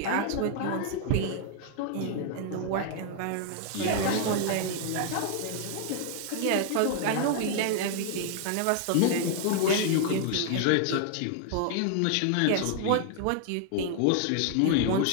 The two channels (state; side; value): different; both; correlation 0.00